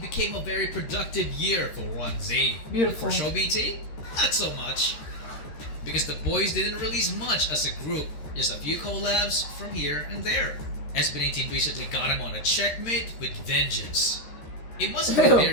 became a very productive year for 1Z. Beautiful. For Show BT, not so much. Because the boys didn't release much as a group, just a few collabs from here and there. SB19 recently got him on a checkmate with vengeance. It must have been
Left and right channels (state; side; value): late; right; 13 ms